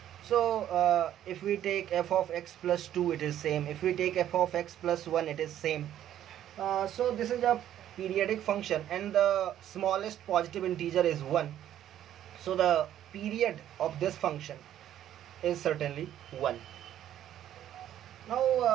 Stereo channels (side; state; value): left; quieter; 11.4 dB